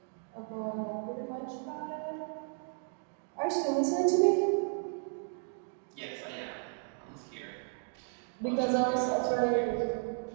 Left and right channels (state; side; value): silent; left; 55 dB below the other